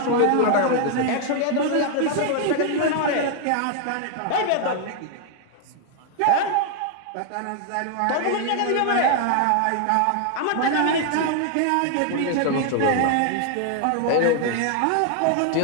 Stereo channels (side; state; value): both; different; correlation 0.00